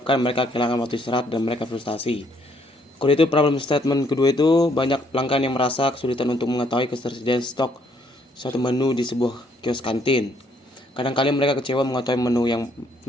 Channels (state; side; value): normal; both; correlation 0.68